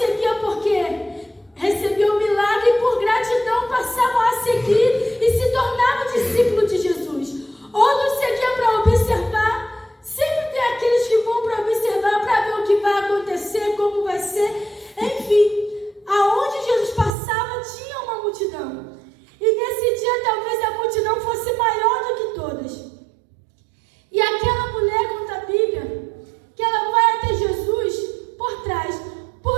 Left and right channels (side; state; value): left; drops out; at 17.1 s